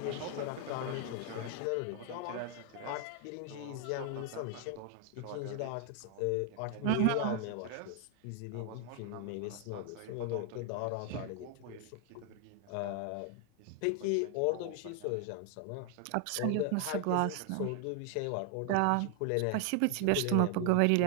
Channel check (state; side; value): different; both; correlation 0.00